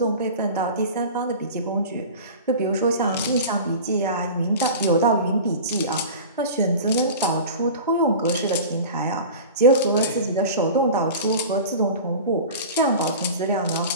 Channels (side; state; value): both; inverted; correlation -0.35